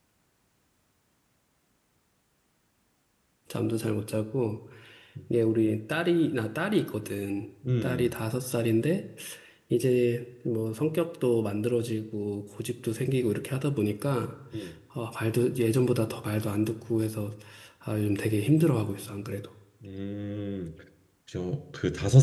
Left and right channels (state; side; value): identical; both; correlation 1.00